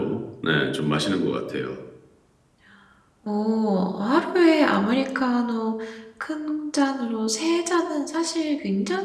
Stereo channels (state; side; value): identical; both; correlation 1.00